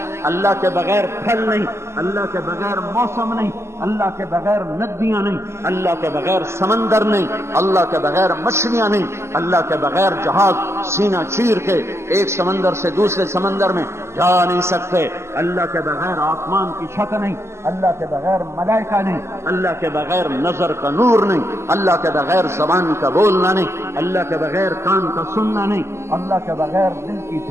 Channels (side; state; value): left; late; 0.13 ms